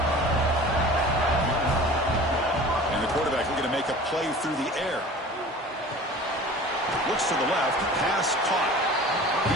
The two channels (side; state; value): both; normal; correlation 0.41